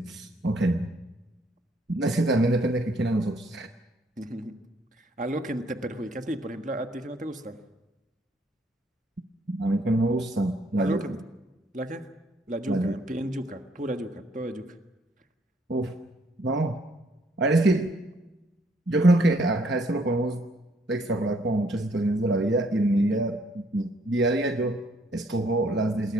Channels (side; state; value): both; normal; correlation 0.66